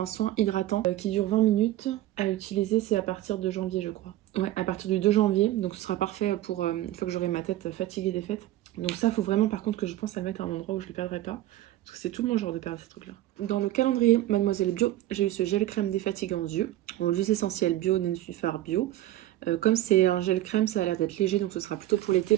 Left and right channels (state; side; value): quieter; left; 14.4 dB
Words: soin hydratant qui dure 20 minutes. À utiliser, c'est à partir de janvier, je crois. Ouais, à partir du 2 janvier. Donc ce sera parfait pour une fois que j'aurai ma tête fatiguée des fêtes. Donc ça, faut vraiment par contre que je pense à le mettre à un endroit où je ne le perdrai pas. Parce que c'est tout mon genre de perdre ces trucs-là. Dans le calendrier Mademoiselle Bio, j'ai eu ce gel crème défatigant yeux. En huile essentielle bio, Nensuphar bio. Comme c'est un gel crème, ça a l'air d'être léger, donc ce sera plutôt pour l'été